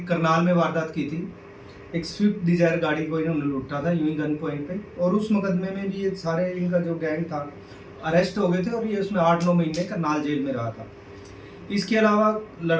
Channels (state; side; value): identical; both; correlation 1.00